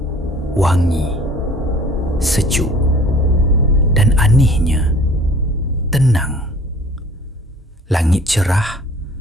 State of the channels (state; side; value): normal; both; correlation 0.50